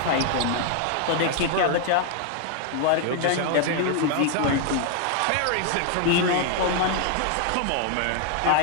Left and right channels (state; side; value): different; both; correlation 0.00